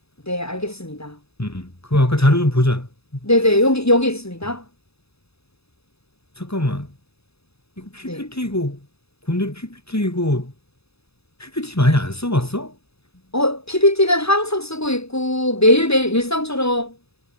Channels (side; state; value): right; late; 0.79 ms